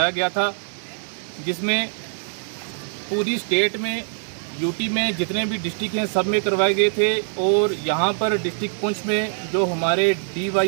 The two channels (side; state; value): left; silent; 58 dB below the other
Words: गया था, जिसमें पूरी स्टेट में यूटी में जितने भी डिस्ट्रिक्ट हैं सब में करवाए गए थे। और यहाँ पर डिस्ट्रिक्ट पुंछ में जो हमारे